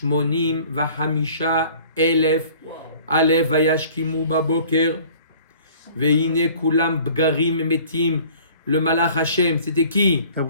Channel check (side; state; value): both; inverted; correlation -0.50